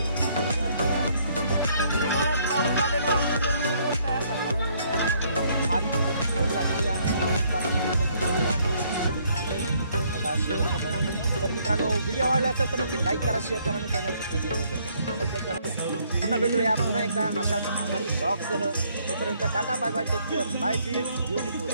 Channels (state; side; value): inverted; both; correlation -0.67